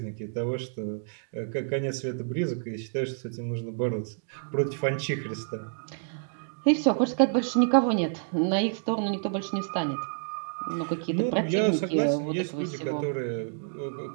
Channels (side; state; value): left; silent; digital silence